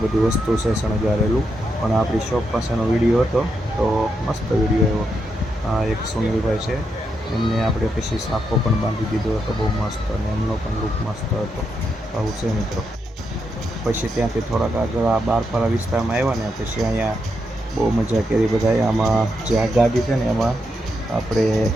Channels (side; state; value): both; normal; correlation 0.82